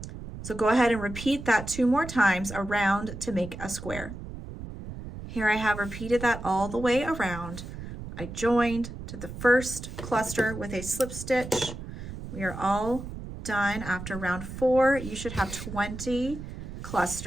So go ahead and repeat that 2 more times around to make a square. Here I have repeated that all the way around. I joined to the first cluster with a slip stitch. We are all done. After round 4, you should have 20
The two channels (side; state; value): right; noise; rumble, 10 dB below the sound